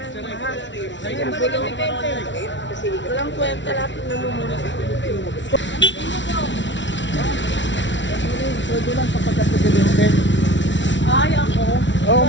Sige, bulok ni Pepe. Walang kwenta lahat ng namumuna sa Pilipinas. Pwede lang sa pagka-presidente. Ay, ako. Oo,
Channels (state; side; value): late; right; 0.54 ms